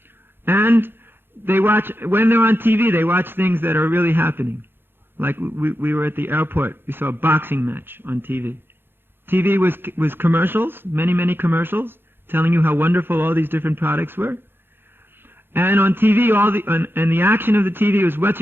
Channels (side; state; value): left; late; 0.10 ms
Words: And they watch, when they're on TV, they watch things that are really happening. Like we were at the airport, we saw a boxing match on TV. TV was commercials, many commercials, telling you how wonderful all these different products were. And on TV, and the action of the TV was much